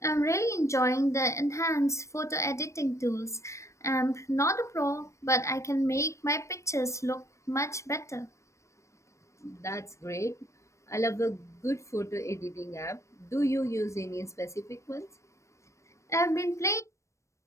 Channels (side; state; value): right; late; 0.15 ms